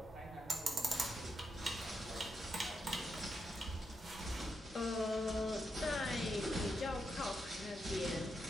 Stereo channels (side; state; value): both; normal; correlation 0.83